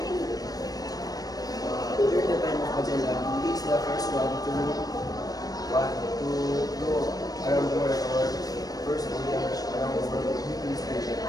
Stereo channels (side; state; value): right; late; 0.18 ms